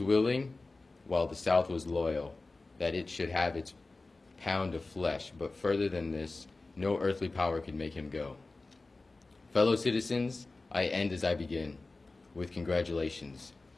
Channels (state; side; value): quieter; right; 3.4 dB